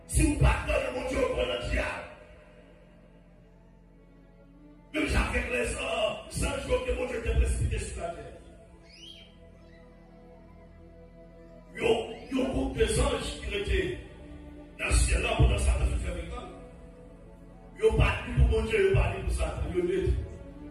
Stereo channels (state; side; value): identical; both; correlation 1.00